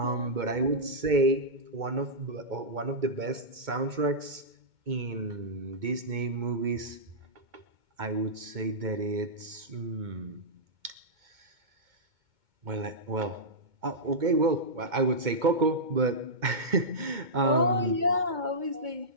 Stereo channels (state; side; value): late; left; 2.2 ms